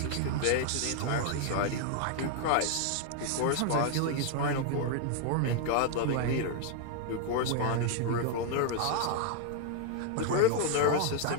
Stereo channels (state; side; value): different; both; correlation 0.00